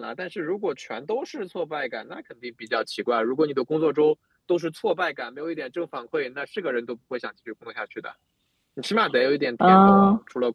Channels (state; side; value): identical; both; correlation 1.00